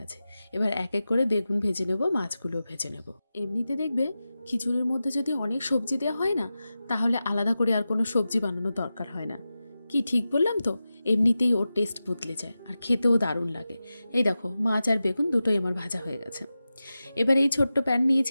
এবার এক এক করে বেগুন ভেজে নেব, মাছগুলোও ভেজে নেব। এমনিতে দেখবে খিচুড়ির মধ্যে যদি অনেক সবজি দেওয়া হয় না, তাহলে আলাদা করে আর কোনো সবজি বানানোর দরকার হয় না। কি ঠিক বললাম তো? এমনিতেই ওর টেস্ট বদলে যায়, আর খেতেও দারুণ লাগে। এই দেখো মাছ আর বেগুন দুটোই আমার ভাজা হয়ে গেছে। এবার এই ছোট্ট প্যান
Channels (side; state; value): both; inverted; correlation -0.93